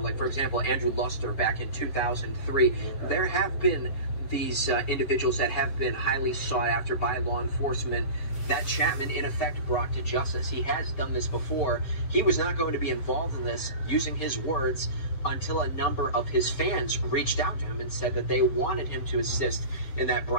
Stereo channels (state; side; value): late; right; 7.6 ms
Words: Like, for example, Andrew Luster back in 2003. There have been these individuals that have been highly sought after by law enforcement that Chapman, in effect, brought to justice. He has done this before. He was not going to be involved in this, using his words, until a number of his fans reached out to him and said that they wanted him to assist in that